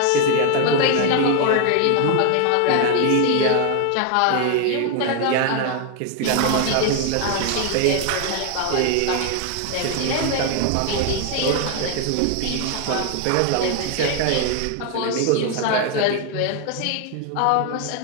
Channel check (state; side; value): different; both; correlation 0.01